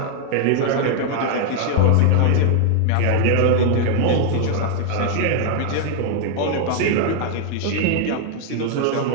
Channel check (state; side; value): different; both; correlation 0.00